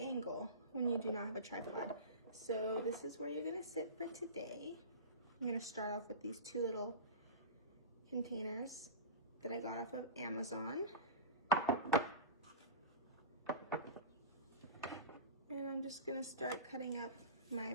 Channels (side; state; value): both; inverted; correlation -0.30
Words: when you do not have a tripod. So this is where you're gonna sit for today. I'm gonna start off with these 2 little containers that I got off of Amazon. And I'm just gonna start cutting up my